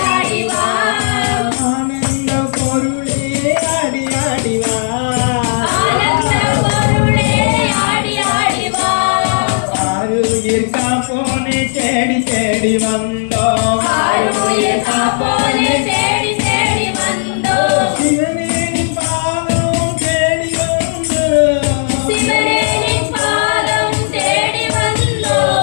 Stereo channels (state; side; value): silent; right; 71 dB below the other